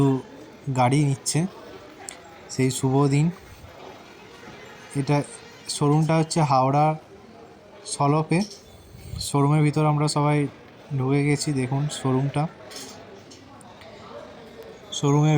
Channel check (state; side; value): identical; both; correlation 1.00